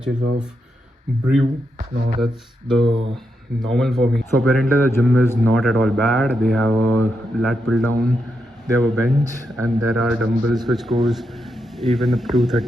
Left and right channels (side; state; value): both; normal; correlation 0.84